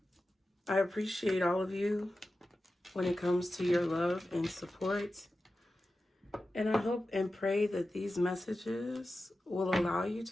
I appreciate all of you when it comes to your love and support. And I hope and pray that these messages will allow you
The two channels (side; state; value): both; normal; correlation 0.93